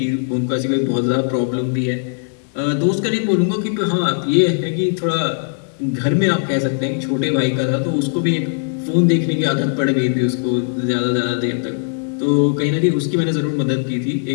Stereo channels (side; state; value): right; silent; digital silence